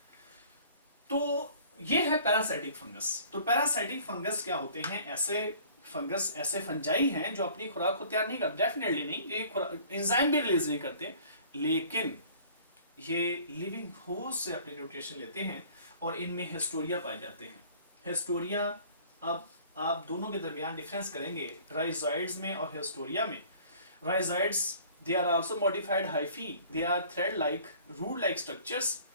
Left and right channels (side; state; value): both; inverted; correlation -0.50